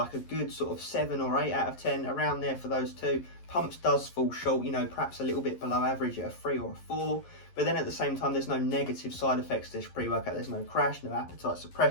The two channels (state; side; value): late; right; 11 ms